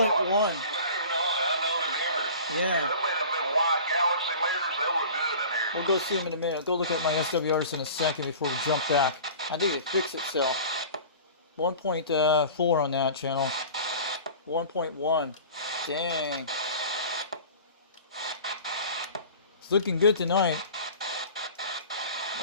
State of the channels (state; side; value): inverted; both; correlation -0.40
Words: You better not. I know it's ever. Yeah. Them been white Galaxy meters, they look good in here. We'll go see them in a minute. Go look at my SWRs in a second before we jump back. I think it fixed itself. 1.4 on that channel. 1.1. Dang. It's looking good tonight.